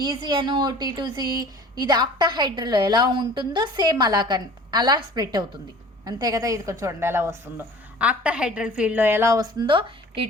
ఈజీ అను T2G, ఇది ఆక్టాహైడ్రల్లో ఎలా ఉంటుందో సేమ్ అలా స్ప్లిట్ అవుతుంది అంతే కదా. ఇది చూడండి ఎలా వస్తుందో. ఆక్టాహైడ్రల్ ఫీల్డ్లో ఎలా వస్తుందో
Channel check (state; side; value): normal; both; correlation 0.45